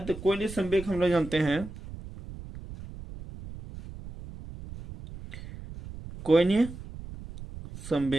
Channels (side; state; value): right; noise; rumble, 13 dB below the sound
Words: तो कोणीय संवेग हम लोग जानते हैं, कोणीय